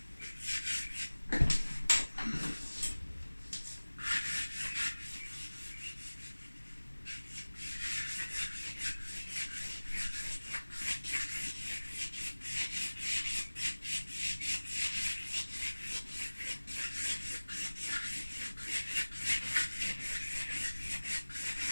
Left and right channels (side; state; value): both; inverted; correlation -1.00